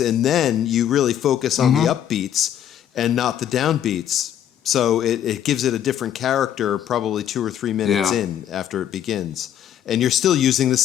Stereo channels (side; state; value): right; quieter; 10.3 dB